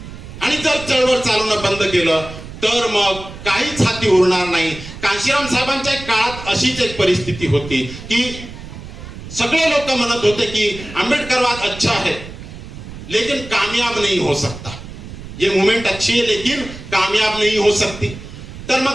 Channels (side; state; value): right; noise; rumble, 13 dB below the sound